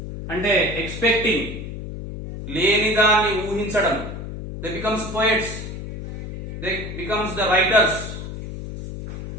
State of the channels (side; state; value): left; noise; hum, 8 dB below the sound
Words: అంటే expecting, లేని దాన్ని ఊహించడం. They becomes poets, they becomes the writers.